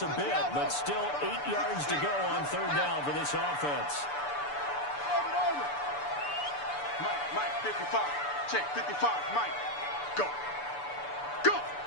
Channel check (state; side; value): late; right; 6.9 ms